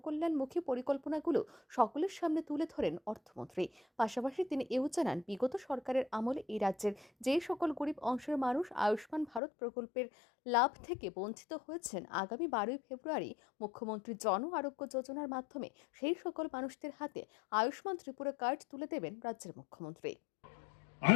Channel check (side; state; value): right; drops out; at 9.4 s